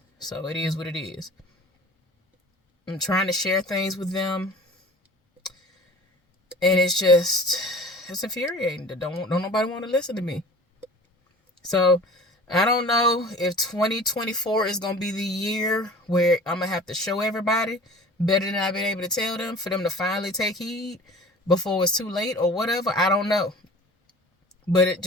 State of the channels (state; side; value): normal; both; correlation 0.42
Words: so it is what it is. I'm trying to share things with them, and it's infuriating. Don't nobody want to listen to me. So I don't know if 2024 is gonna be the year where I'm gonna have to show everybody better than I've been able to tell them for them to finally take heed before it's too late or whatever. I don't know. But